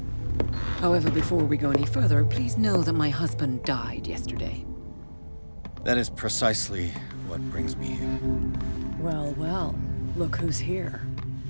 However, before we go any further, please know that my husband died yesterday. That is precisely what brings me here. Well, well, look who's here.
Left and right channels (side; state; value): both; inverted; correlation -1.00